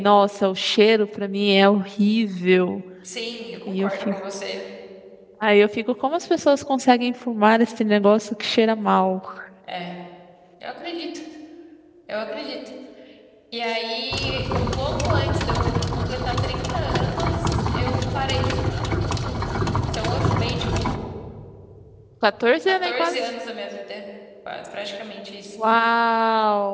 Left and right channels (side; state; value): both; identical; correlation 1.00